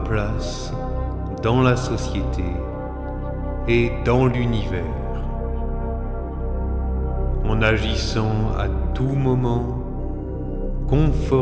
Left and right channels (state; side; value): identical; both; correlation 1.00